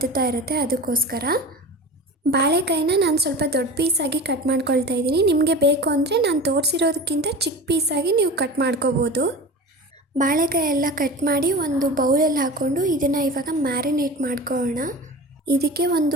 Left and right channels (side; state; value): both; normal; correlation 0.33